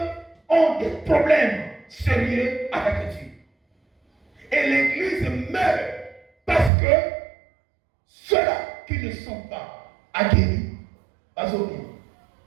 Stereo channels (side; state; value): left; drops out; at 6.7 s